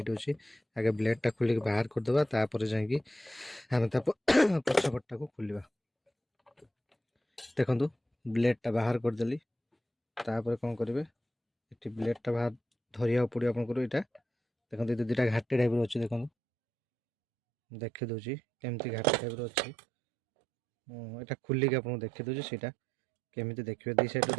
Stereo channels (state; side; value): drops out; left; at 16.3 s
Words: अच्छी आगे ब्लेड टा खोलिक बाहर करदेबा तापर जाकि आम पछपटा को खोलिबा देखो ब्लेड टा बाहर करदेली तापर कौन करेंगे ये ब्लेड टा बाहर धरिया पड़ो आपको यहाँ देखो ये दुटा घाटी टाइप अच्छे देखो देखी दूसरी केमती घाटी टाइप अच्छी यहाँ खोलिक आपको देखी दूसरी सीटा केमी देखिए दी साइड